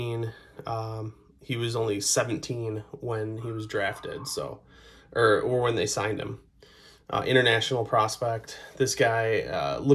he was only 17 when he was drafted. So, or when they signed him. International prospect. This guy,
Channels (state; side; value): identical; both; correlation 1.00